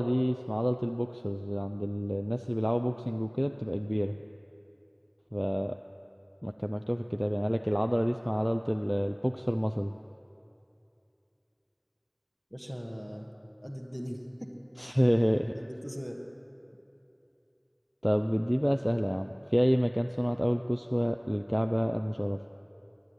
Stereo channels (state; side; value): identical; both; correlation 1.00